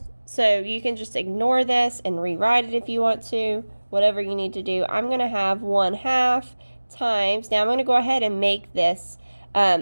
So you can just ignore this and rewrite it if you want to, whatever you need to do. I'm going to have 1/2 times, now I'm going to go ahead and make this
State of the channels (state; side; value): inverted; both; correlation -1.00